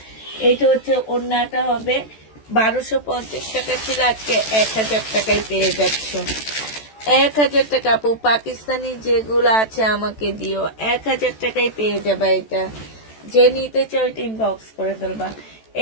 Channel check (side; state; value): right; late; 14 ms